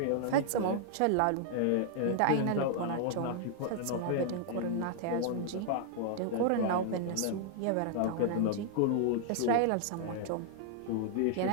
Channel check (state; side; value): different; both; correlation 0.00